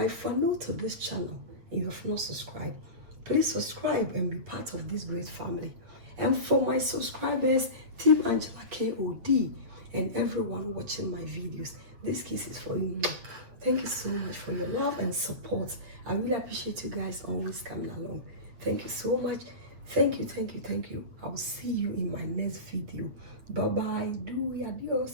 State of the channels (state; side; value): late; left; 8.8 ms